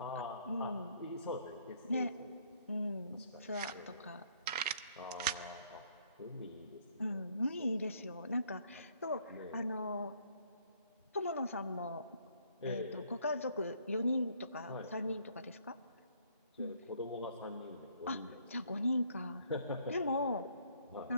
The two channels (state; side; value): inverted; both; correlation -0.65